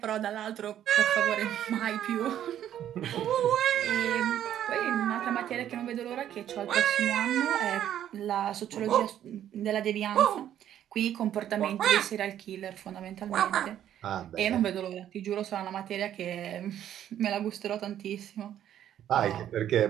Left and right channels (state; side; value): quieter; left; 10.9 dB